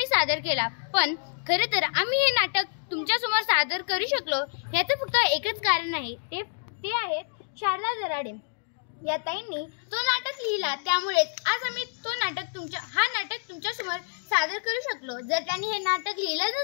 सादर केला। पण खरे तर आम्ही हे नाटक तुमच्या समोर सादर करू शकलो याचं फक्त एकच कारण आहे, ते आहेत शारदा दराडे या ताईंनी तो नाटक लिहिला। त्यामुळे आज आम्ही हा नाटक तुमच्या समोर सादर करू शकलो। जर त्यांनी हे नाटक लिहिलं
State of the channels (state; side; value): silent; right; digital silence